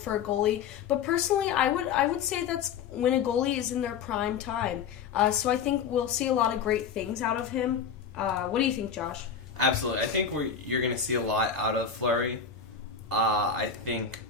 a goalie. But personally, I would say that's when a goalie is in their prime time. So I think we'll see a lot of great things out of him. What do you think, Josh? Absolutely. I think you're going to see a lot out of Fleury. I think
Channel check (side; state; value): right; quieter; 6.7 dB